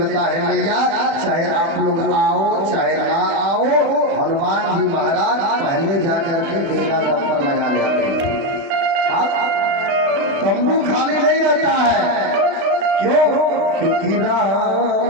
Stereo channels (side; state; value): left; late; 36 ms